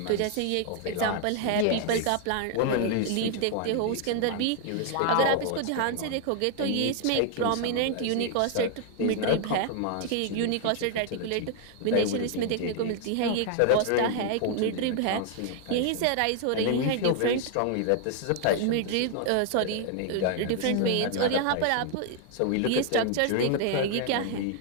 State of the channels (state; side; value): different; both; correlation 0.00